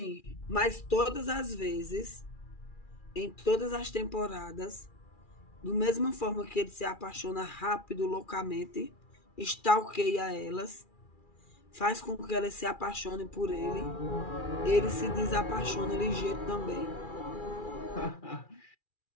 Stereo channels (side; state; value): right; late; 2.4 ms